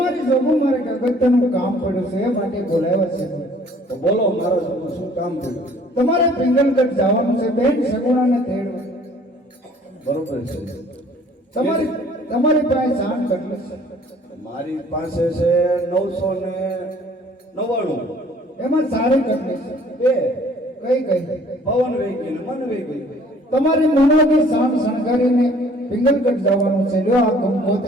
જોગું મારે અગત્યનું કામ પડ્યું છે એ માટે બોલાવ્યા છે. તો બોલો મારો શું કામ થયું? તમારે પિંગલગઢ જવાનું છે બેન સગુણાને તેડવા. બરોબર છે. તમારી પાસે જાણ કેટલી છે? મારી પાસે છે 999. એમાં સારી કેટલી છે? બે. કઈ કઈ? પવન વહી ગઈ ને મન વહી ગઈ. તમારી મનોની શાન શણગારીને પિંગલગઢ જવાનું છે. લ્યો આ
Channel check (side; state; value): both; normal; correlation 0.55